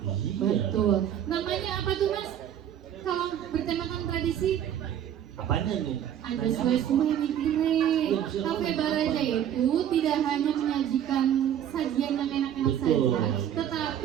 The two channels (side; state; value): left; quieter; 10.0 dB